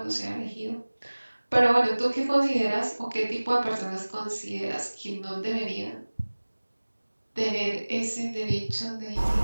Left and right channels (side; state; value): both; inverted; correlation -1.00